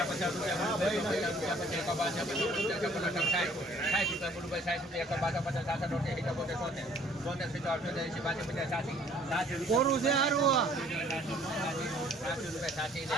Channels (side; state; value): both; normal; correlation 0.57